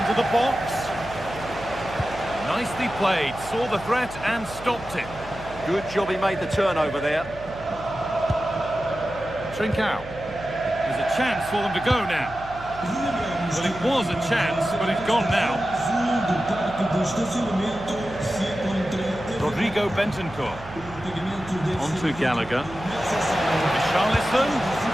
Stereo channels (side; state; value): right; noise; hum, 16 dB below the sound